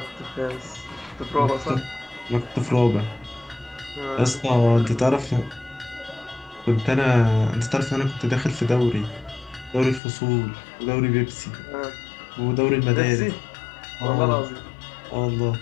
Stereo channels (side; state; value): right; drops out; at 10.0 s